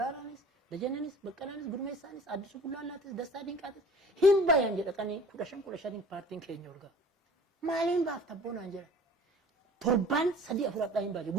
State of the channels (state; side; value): normal; both; correlation 0.46